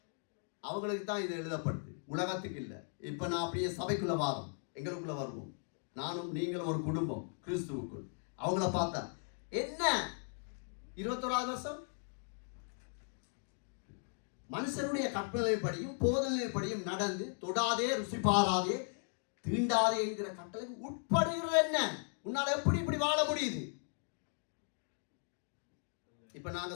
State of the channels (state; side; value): silent; right; 53 dB below the other